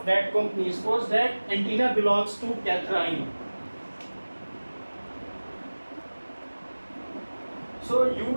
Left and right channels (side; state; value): both; inverted; correlation -1.00